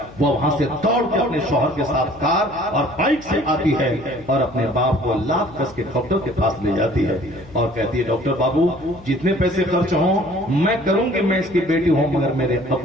وہ وہاں سے دوڑ کے اپنے شوہر کے ساتھ کار اور بائک سے آتی ہے اور اپنے باپ کو لاکھ کس کے ڈاکٹر کے پاس لے جاتی ہے اور کہتی ہے, ڈاکٹر بابو جتنے پیسے خرچ ہوں میں کروں گی, میں اس کی بیٹی ہوں مگر میرے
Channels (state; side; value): noise; left; hum, 20 dB below the sound